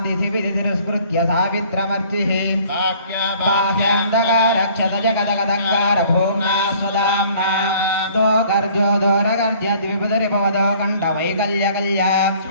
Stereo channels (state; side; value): inverted; both; correlation -0.55